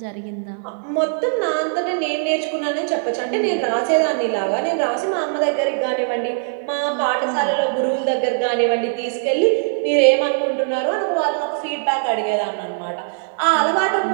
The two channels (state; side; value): silent; left; 65 dB below the other